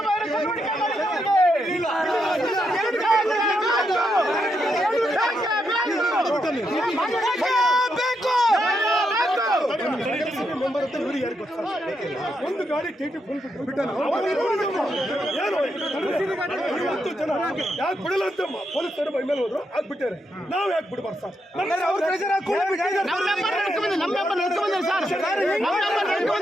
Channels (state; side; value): normal; both; correlation 0.81